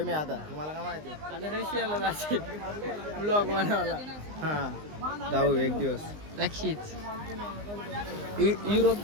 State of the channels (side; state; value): left; late; 19 ms